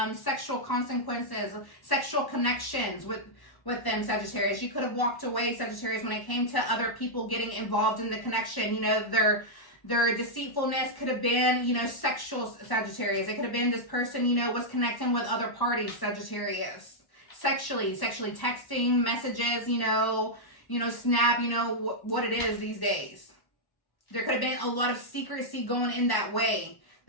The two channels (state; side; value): late; right; 1.1 ms